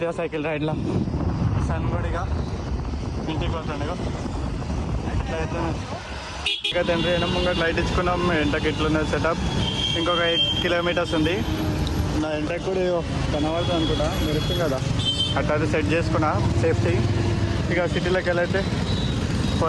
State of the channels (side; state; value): both; identical; correlation 1.00